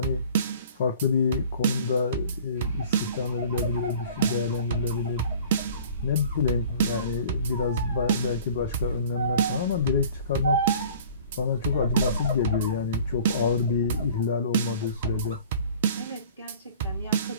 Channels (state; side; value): inverted; both; correlation -0.47